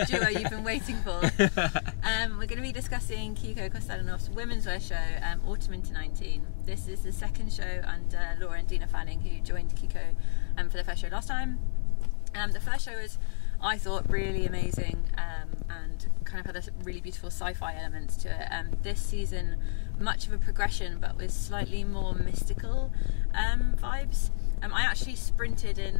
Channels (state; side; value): silent; right; 56 dB below the other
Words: duo you've been waiting for. We're going to be discussing Kiko Kostadinov's Womenswear show, Autumn into 19. This is the second show under Laura and Dina Fanning, who joined Kiko for the first show last time. The first show was, I thought, really amazing and kind of had a really beautiful sci-fi elements to it. This season, much of a progression, but with slightly more mystical vibes. I actually sprinted